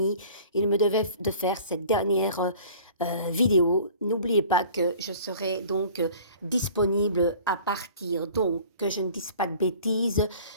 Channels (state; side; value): inverted; both; correlation -0.46